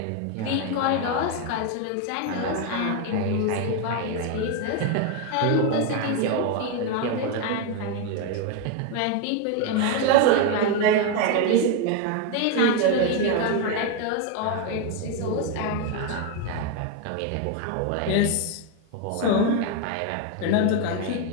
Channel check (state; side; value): different; both; correlation 0.02